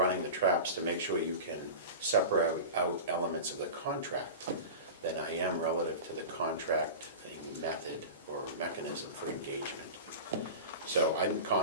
the traps to make sure you can separate out elements of the contract than I am relative to the contract method or mechanism for engagement. So I'm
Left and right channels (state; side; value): inverted; both; correlation -0.30